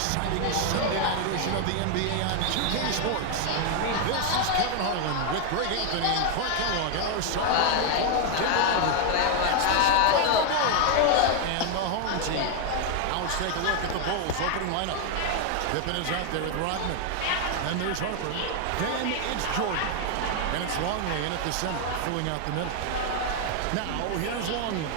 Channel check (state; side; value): different; both; correlation 0.00